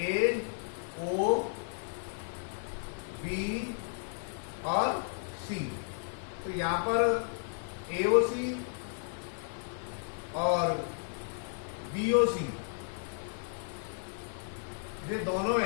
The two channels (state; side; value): silent; right; 55 dB below the other